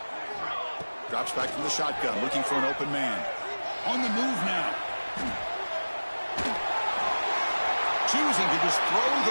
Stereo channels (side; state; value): both; inverted; correlation -1.00